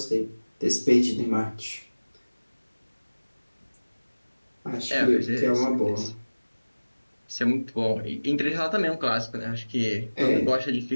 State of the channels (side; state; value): both; inverted; correlation -1.00